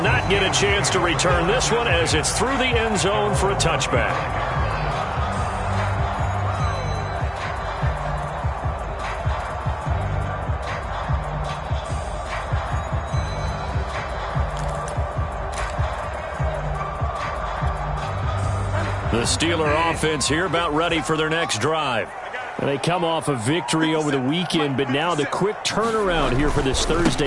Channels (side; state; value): both; identical; correlation 1.00